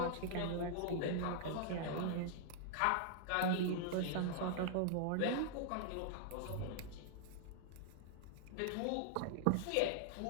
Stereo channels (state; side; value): different; both; correlation -0.01